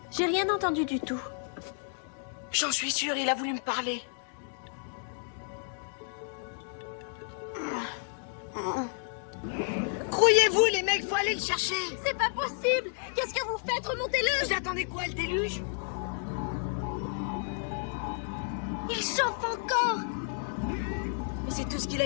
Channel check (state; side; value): silent; right; 57 dB below the other